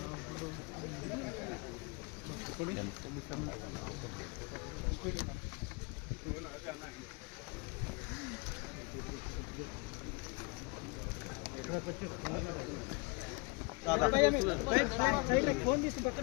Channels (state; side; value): quieter; right; 28.0 dB